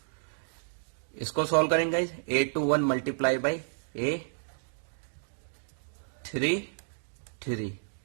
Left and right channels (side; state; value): left; silent; digital silence